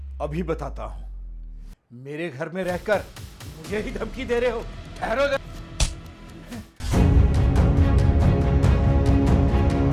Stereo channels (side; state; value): both; identical; correlation 1.00